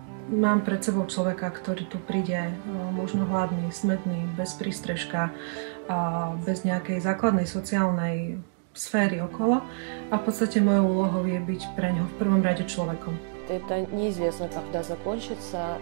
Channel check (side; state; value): left; silent; digital silence